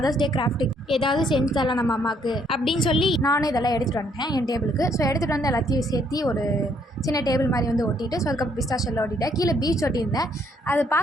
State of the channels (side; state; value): both; normal; correlation 0.68